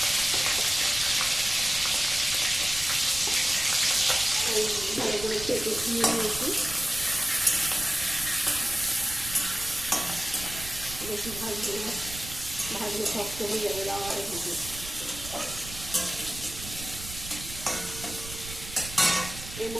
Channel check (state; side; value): noise; right; rumble, 12 dB below the sound